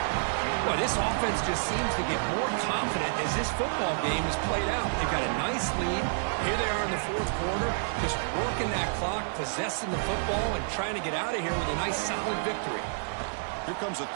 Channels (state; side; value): silent; left; digital silence